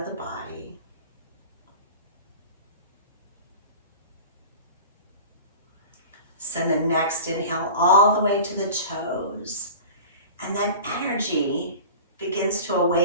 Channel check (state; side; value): inverted; both; correlation -0.38